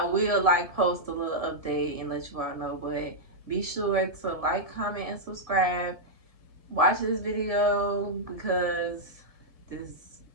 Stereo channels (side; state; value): left; late; 1.7 ms